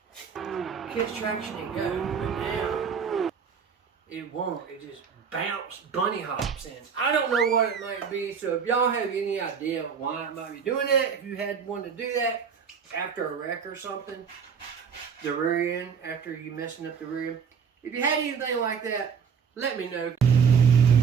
catch traction and go. But now, it won't. It just bunny hops in. I don't know what it might be, so if y'all have any idea why it might be doing that, if you had one to do that after a wreck or something, the rear end, after you messing up the rear end, if you had anything like that, let me know.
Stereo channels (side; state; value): left; quieter; 6.6 dB